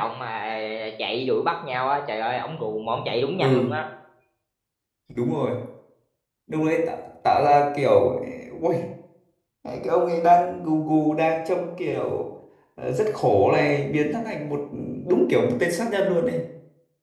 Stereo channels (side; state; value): both; identical; correlation 1.00